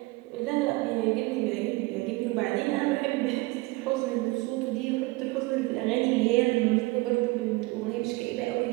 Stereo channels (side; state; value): left; quieter; 22.6 dB